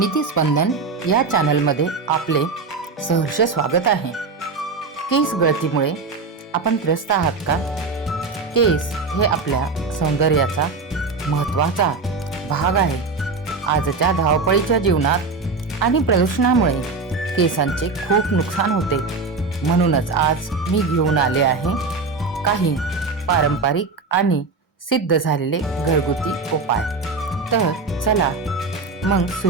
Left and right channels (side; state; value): left; quieter; 4.2 dB